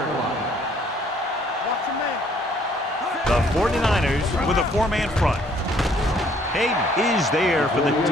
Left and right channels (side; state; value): both; normal; correlation 0.62